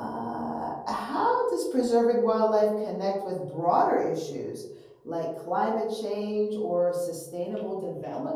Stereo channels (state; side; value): identical; both; correlation 1.00